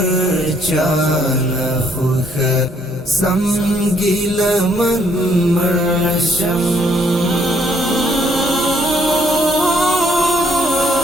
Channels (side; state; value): both; normal; correlation 0.68